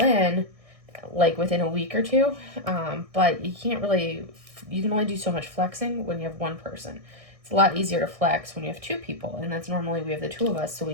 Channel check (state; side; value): late; left; 1.6 ms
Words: in like within a week or two, but you can only do so much flexing when you have one person. It's a lot easier to flex when you have two people, and that's normally we have the two of us so